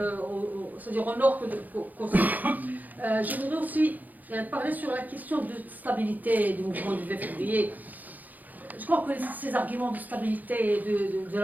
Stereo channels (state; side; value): late; left; 0.082 ms